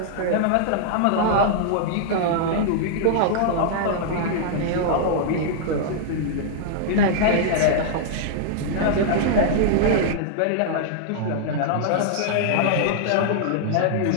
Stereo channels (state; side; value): different; both; correlation -0.01